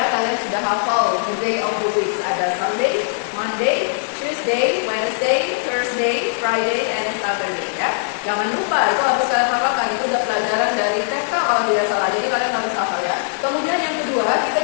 kalian sudah hafal the day of the week. Ada Sunday, Monday, Tuesday, Wednesday, Thursday, Friday, and Saturday ya. Jangan lupa, itu harus kalian hafalkan. Itu udah pelajaran dari TK kalau tidak salah. Jadi kalian harus hafal ya. Kemudian yang kedua, kita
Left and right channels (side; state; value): right; silent; digital silence